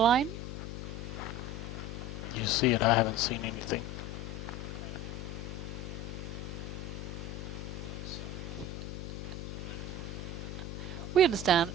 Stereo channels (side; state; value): left; noise; hum, 6 dB below the sound